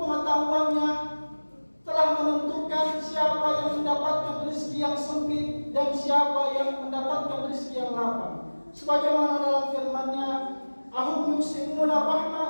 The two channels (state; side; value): inverted; both; correlation -1.00